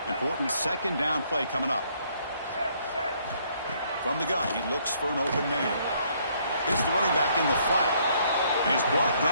Important 2nd down play coming up. From the gun, he looks for an open man. It's the running back in the flat. And he's brought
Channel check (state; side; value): inverted; both; correlation -0.67